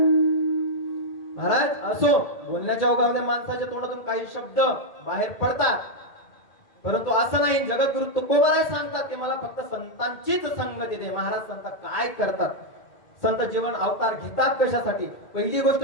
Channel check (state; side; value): late; right; 1.8 ms